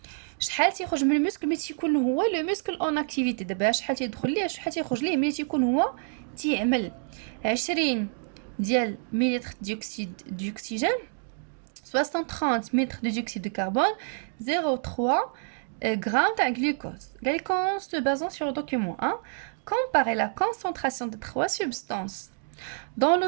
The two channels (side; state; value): left; silent; digital silence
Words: شحال تيخرج من المسكل ملي تيكون هو لو مسكل اون اكتيفيتي؟ دابا شحال تيدخل ليه شحال تيخرج ليه ملي تيكون هو تيعمل؟ 20 ديال مليلتر ديوكسيد ديوكسيجين، 630 مليلتر de dioxyde de carbone, 0,3 grammes de glucose. On se basant sur le document 1, comparer la concentration des trois substances dans le